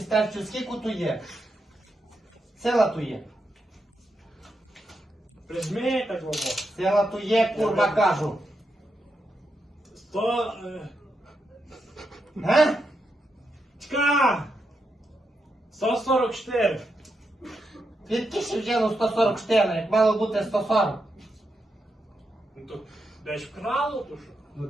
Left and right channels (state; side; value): normal; both; correlation 0.84